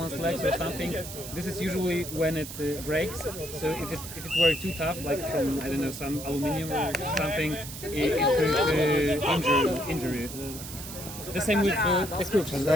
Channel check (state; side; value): noise; right; hiss, 11 dB below the sound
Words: legs or something. This is usually when it breaks. So if it were too tough, like from I don't know some aluminium or something, it could injure you. The same with the croups.